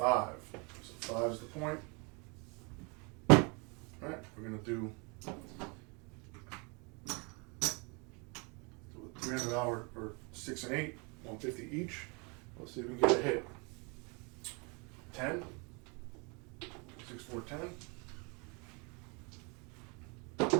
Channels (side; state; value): left; quieter; 31.8 dB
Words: So 5 is the point. All right, we're going to do a $300 or 6 and 8, 150 each. Let's see if we can get a hit. 10. 6, 4, 10.